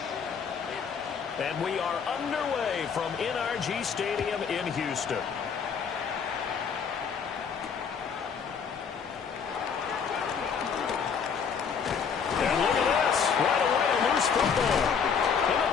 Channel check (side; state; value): right; quieter; 6.5 dB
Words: And we are underway from NRG Stadium in Houston. And look at this. Right away, a loose football. And